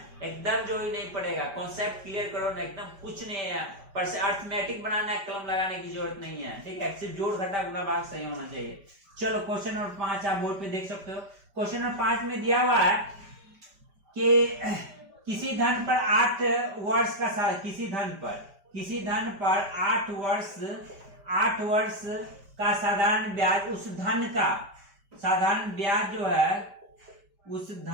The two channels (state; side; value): late; left; 5.1 ms